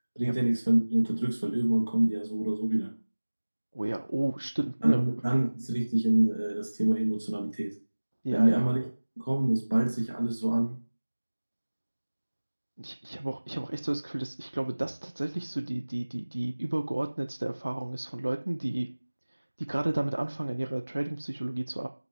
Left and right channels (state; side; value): inverted; both; correlation -1.00